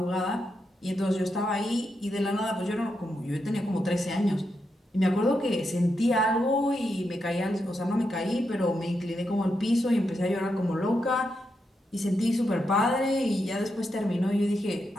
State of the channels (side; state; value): both; normal; correlation 0.84